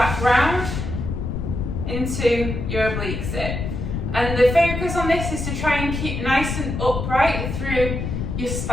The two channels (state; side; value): noise; left; rumble, 4 dB below the sound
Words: round into your oblique sit. And the focus on this is to try and keep nice and upright through your